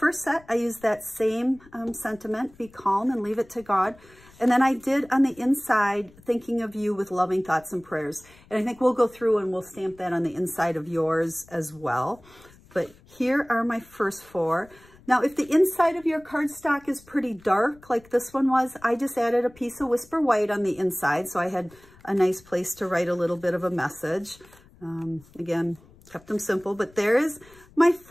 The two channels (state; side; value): noise; left; rumble, 26 dB below the sound